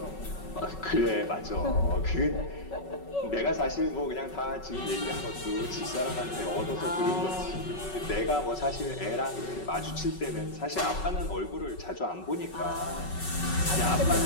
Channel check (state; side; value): late; right; 5.3 ms